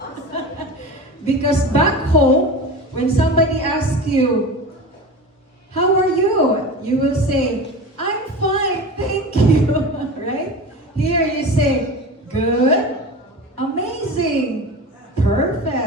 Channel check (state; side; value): normal; both; correlation 0.31